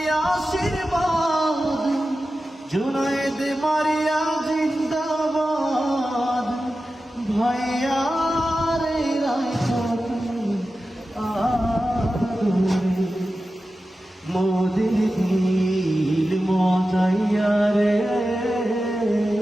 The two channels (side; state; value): both; normal; correlation 0.93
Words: আশীর্বাদ জুনায়েদ মারিয়া জিন্দাবাদ। ভাইয়া রে মোদের দিল মজাইয়া রে